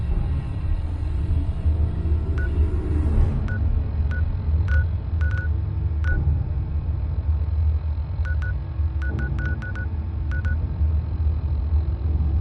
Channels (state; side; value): identical; both; correlation 1.00